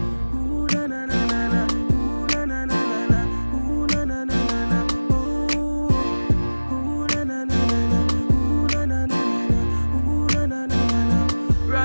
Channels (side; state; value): both; inverted; correlation -1.00